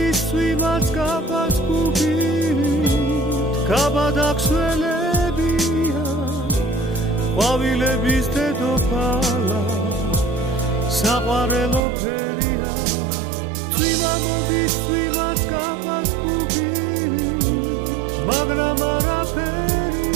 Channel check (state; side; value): drops out; left; at 11.8 s